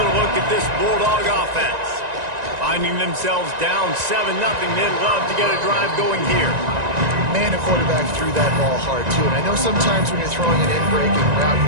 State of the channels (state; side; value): late; left; 1.9 ms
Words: look at this Bulldog offense. Finding themselves down 7-0, they'd love to get a drive going here. Man, a quarterback threw that ball hard, too. And I know sometimes when you're throwing an in-breaking route, you